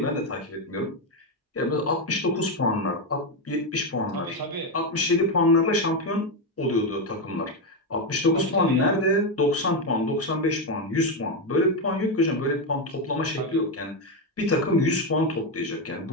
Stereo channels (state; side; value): normal; both; correlation 0.08